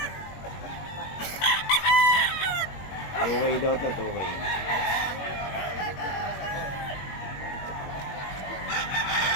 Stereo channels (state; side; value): late; right; 21 ms